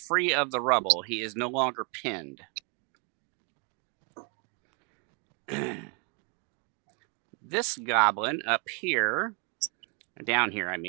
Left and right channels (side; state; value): left; quieter; 35.8 dB